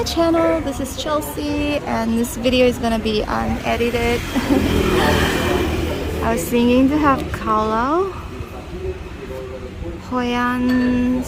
channel. This is Chelsea, and this video is gonna be unedited. I was thinking to have Kao Hoi An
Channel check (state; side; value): identical; both; correlation 1.00